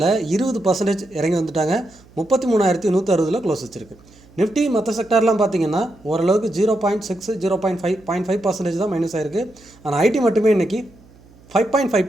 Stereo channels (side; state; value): right; noise; hum, 26 dB below the sound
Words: 20% இறங்கி வந்துட்டாங்க. 33,160 க்ளோஸ் வச்சுருக்கு. நிஃப்டி மற்ற செக்டார்லாம் பார்த்திங்கன்னா ஓரளவுக்கு 0.6 0.5% தான் மைனஸ் ஆகிருக்கு. ஆனால் ஐடி மட்டுமே இன்றைக்கி